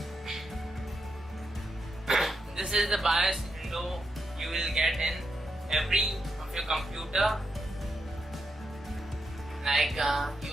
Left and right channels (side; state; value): both; normal; correlation 0.82